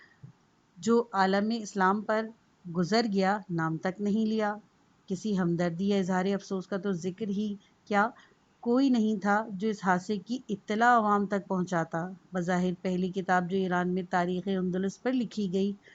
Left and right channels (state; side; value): identical; both; correlation 1.00